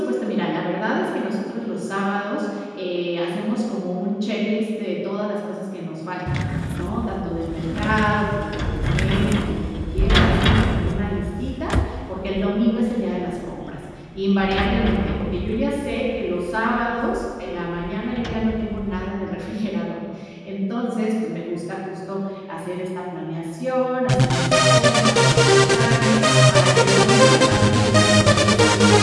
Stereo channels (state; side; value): identical; both; correlation 1.00